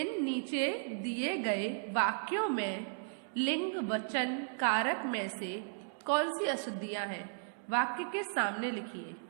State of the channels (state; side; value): silent; left; 54 dB below the other